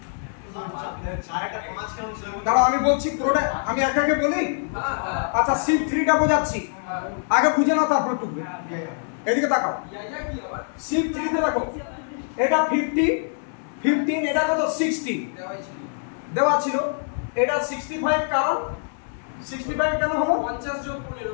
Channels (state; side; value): silent; right; digital silence